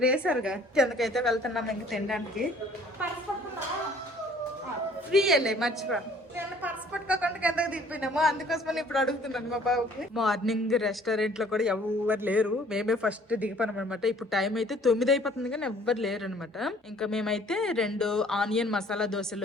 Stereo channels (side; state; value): both; normal; correlation 0.56